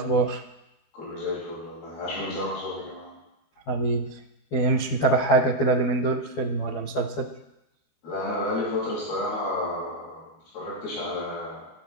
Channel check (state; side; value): late; right; 12 ms